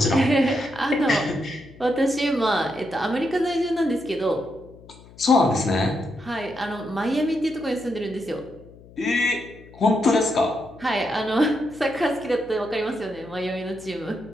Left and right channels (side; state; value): left; noise; hum, 22 dB below the sound